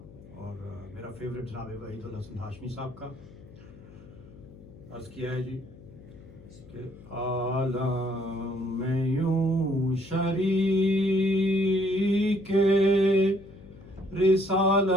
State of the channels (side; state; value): left; noise; hum, 20 dB below the sound